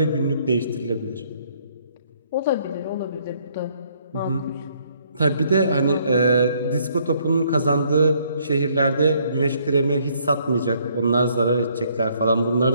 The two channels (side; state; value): both; inverted; correlation -0.67